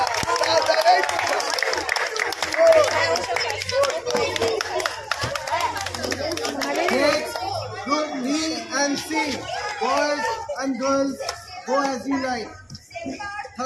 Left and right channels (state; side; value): identical; both; correlation 1.00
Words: Group B and C, boys and girls, go as you like.